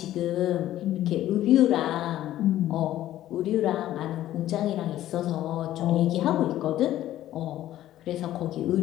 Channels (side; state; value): right; quieter; 13.4 dB